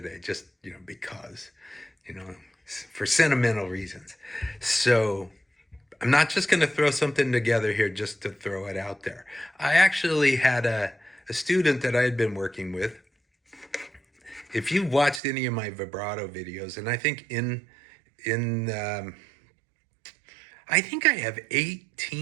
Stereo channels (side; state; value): left; drops out; at 15.2 s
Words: just, because, for sentimental reasons. So I'm not just going to throw something together here just to throw it out there. I actually had a student that I had been working with. If you've watched any of my vibrato videos, and I think I think I have